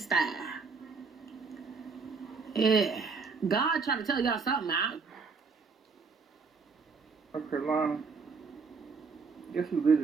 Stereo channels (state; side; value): quieter; left; 5.0 dB